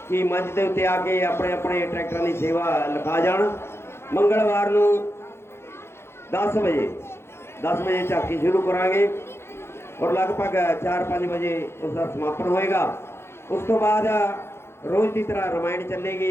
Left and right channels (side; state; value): right; late; 0.12 ms